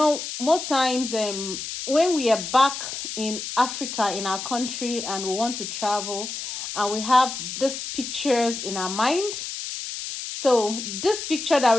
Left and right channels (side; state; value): left; noise; hiss, 7 dB below the sound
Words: most times when we are back in Africa, in our country, and we want to travel, and we have these pictures in our mind. So this picture that